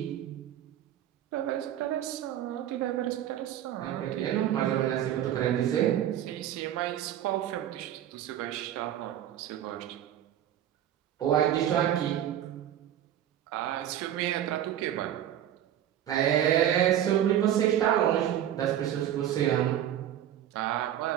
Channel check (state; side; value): quieter; left; 11.2 dB